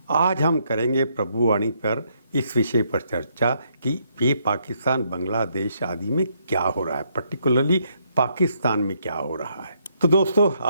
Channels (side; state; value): both; inverted; correlation -0.73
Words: आज हम करेंगे प्रभुवाणी पर इस विषय पर चर्चा कि ये पाकिस्तान बांग्लादेश आदि में क्या हो रहा है, पर्टिकुलरली पाकिस्तान में क्या हो रहा है। तो दोस्तों,